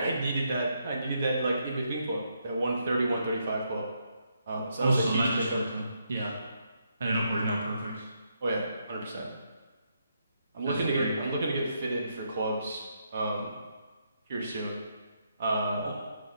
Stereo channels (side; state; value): both; inverted; correlation -0.78